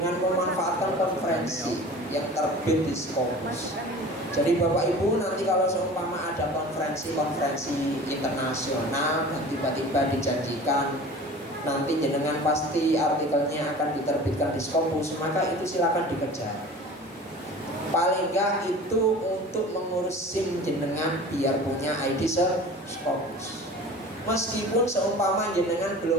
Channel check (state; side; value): normal; both; correlation 0.40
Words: memanfaatkan konferensi yang terbit di Scopus. Jadi Bapak Ibu nanti kalau seumpama ada konferensi internasional dan tiba-tiba dijanjikan nanti jenengan pasti artikelnya akan diterbitkan di Scopus, maka itu silakan dikejar. Paling enggak itu untuk mengurus SIM jenengan biar punya ID Scopus. Meskipun seumpama jenengan